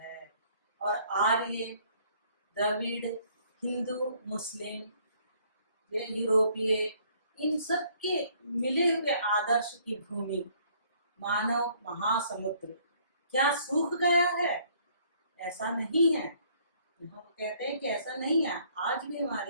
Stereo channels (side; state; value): both; inverted; correlation -0.62